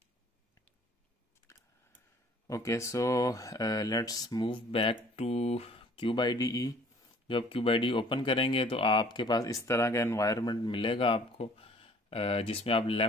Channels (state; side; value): normal; both; correlation 0.54